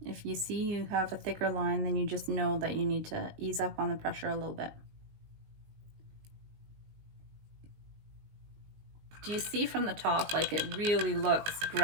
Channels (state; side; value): late; left; 19 ms